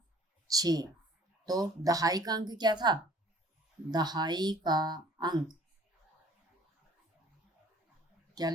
6। तो दहाई का अंक क्या था, दहाई का अंक क्या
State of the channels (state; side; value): normal; both; correlation 0.53